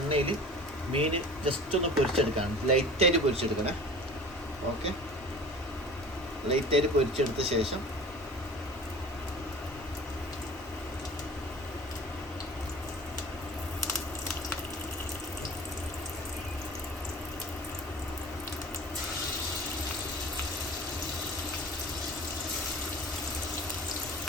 മീൻ ജസ്റ്റ് ഒന്ന് പൊരിച്ചെടുക്കാണ്. ലൈറ്റായിട്ട് പൊരിച്ചെടുക്കണേ. ഓക്കെ, ലൈറ്റായിട്ട് പൊരിച്ചെടുത്ത ശേഷം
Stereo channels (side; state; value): both; normal; correlation 0.41